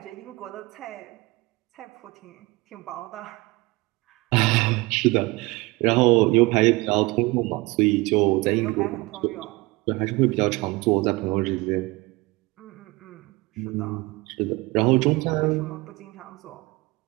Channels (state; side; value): quieter; left; 23.3 dB